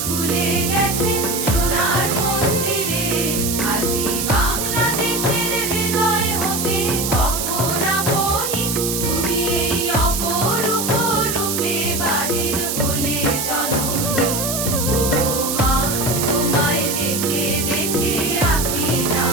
খুলে গেছে সোনার মন্দিরে। আজি বাংলাদেশের হৃদয় হতে কখন আপনি তুমি এই অপরূপ রূপে বাহির হলে জননী। ওগো মা, তোমায় দেখে দেখে আঁখি না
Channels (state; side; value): noise; right; hiss, 2 dB below the sound